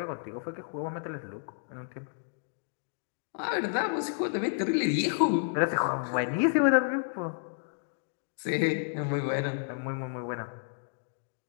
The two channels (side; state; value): right; silent; digital silence